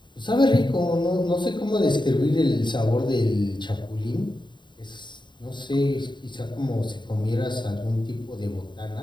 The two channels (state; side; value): late; right; 0.22 ms